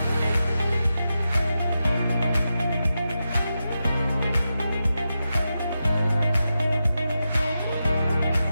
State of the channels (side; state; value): both; inverted; correlation -0.89